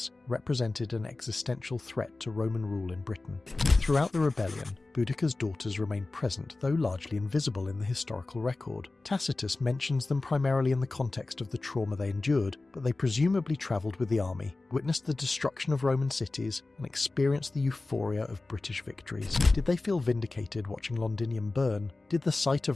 represented an existential threat to Roman rule in Britain. Throughout the rebellion, Boudicca's daughters remained present, though largely invisible in the historical record. Tacitus mentions them primarily in the context of the trauma they endured, but they presumably travelled with the army, witnessed the destruction of Roman cities, and experienced the euphoria of British victories. Did they feel vindicated watching Londinium burn? Did the sight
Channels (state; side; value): quieter; right; 3.2 dB